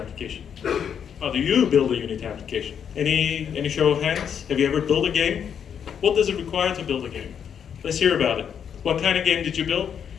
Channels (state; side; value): quieter; right; 8.0 dB